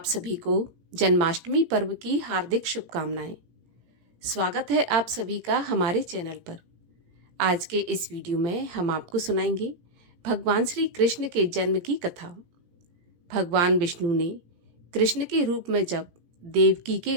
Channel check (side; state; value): left; late; 17 ms